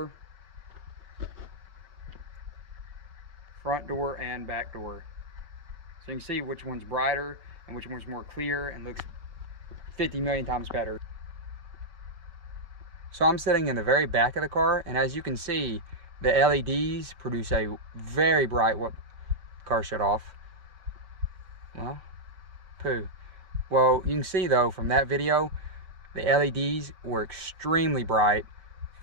front door, and back door. So you can see which one's brighter and which one's more clear and looks 50 million times better. So I'm sitting in the very back of the car, and as you can see, the LEDs produce a very bright, what car shut off. Well, poo. Well, you can see though from that video, the LEDs were extremely bright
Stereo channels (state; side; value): late; left; 5.2 ms